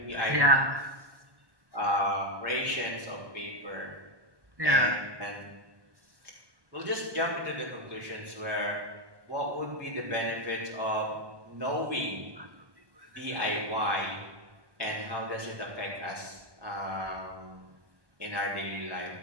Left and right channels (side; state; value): left; late; 1.2 ms